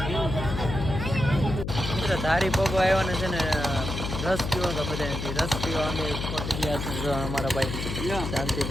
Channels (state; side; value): noise; left; hum, 4 dB below the sound